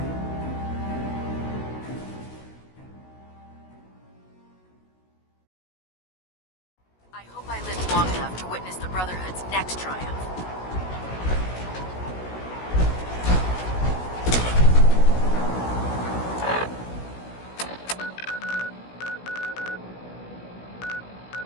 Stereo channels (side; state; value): right; late; 16 ms